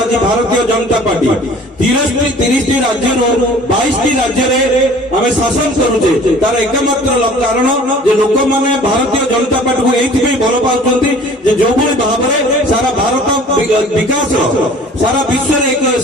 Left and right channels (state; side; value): normal; both; correlation 0.49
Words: ଆଜି ଭାରତୀୟ ଜନତା ପାର୍ଟି 30ଟି ରାଜ୍ୟରୁ 22ଟି ରାଜ୍ୟରେ ଆମେ ଶାସନ କରୁଛେ। ତାର ଏକମାତ୍ର କାରଣ ଯେ ଲୋକମାନେ ଭାରତୀୟ ଜନତା ପାର୍ଟିକୁ ଏଇଥିପାଇଁ ଭଲ ପାଉଛନ୍ତି ଯେ ଯୋଉଭଳି ଭାବରେ ସାରା ଭାରତ ବିକାଶ ସାରା ବିଶ୍ୱରେ ଏକ